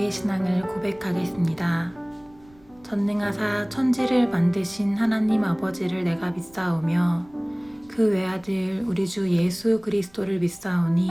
신앙을 고백하겠습니다. 전능하사 천지를 만드신 하나님 아버지를 내가 믿사오며 그 외아들 우리 주 예수 그리스도를 믿사오니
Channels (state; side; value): noise; right; rumble, 28 dB below the sound